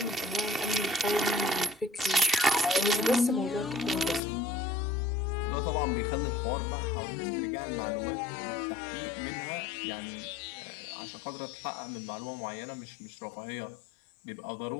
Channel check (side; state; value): right; drops out; at 4.2 s